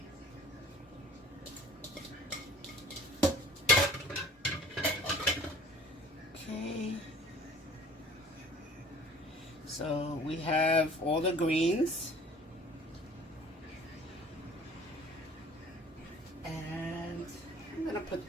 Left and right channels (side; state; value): both; normal; correlation 0.49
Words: Okay. So we have all the greens. And I'm going to put